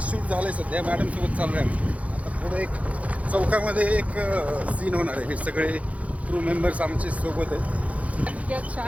झालंय सध्या, मॅडम सोबत चालू आहे आम्ही. आता पुढे एक चौकामध्ये एक सीन होणार आहे. हे सगळे क्रू मेंबर्स आमचे सोबत आहेत.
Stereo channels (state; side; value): late; left; 0.066 ms